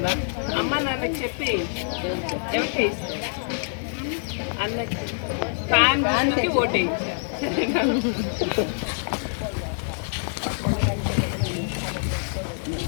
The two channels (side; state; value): right; silent; digital silence